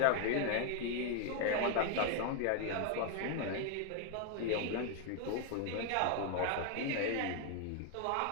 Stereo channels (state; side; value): different; both; correlation 0.01